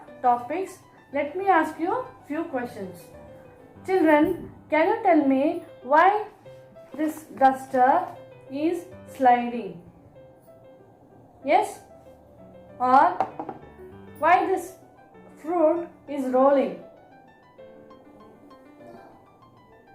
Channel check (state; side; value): identical; both; correlation 1.00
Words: topics, let me ask you few questions. Children, can you tell me why this duster is sliding? Yes? Or why this fruit is rolling?